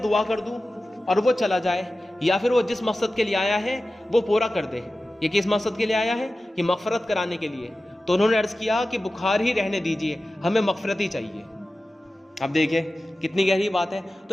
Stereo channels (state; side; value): normal; both; correlation 0.95